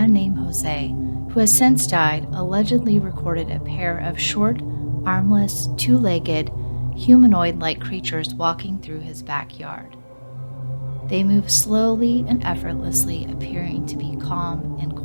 named Jose, who has since died, allegedly recorded a pair of short, armless, two-legged, humanoid-like creatures walking through his backyard. They move slowly and effortlessly, appearing to be calm and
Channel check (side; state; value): both; inverted; correlation -1.00